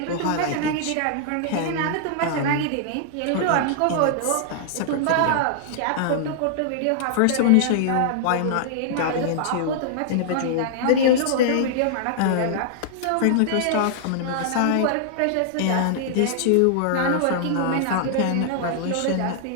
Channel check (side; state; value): both; different; correlation -0.01